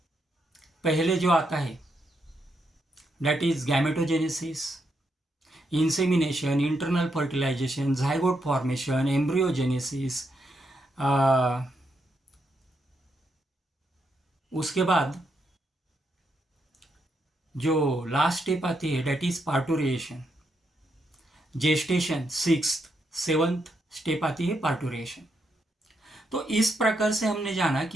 पहले जो आता है that is gametogenesis, insemination, internal fertilisation, zygote formation, embryogenesis. उसके बाद जो लास्ट स्टेप आती है that is parturition, gestation, 6th 7th step आती है पार्टुरिएशन। तो इस प्रकार से हमने जाना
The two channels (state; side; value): normal; both; correlation 0.80